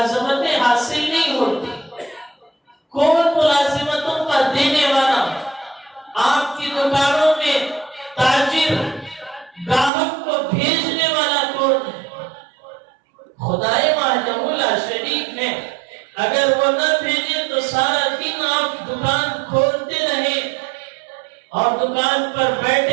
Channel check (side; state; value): left; drops out; at 9.9 s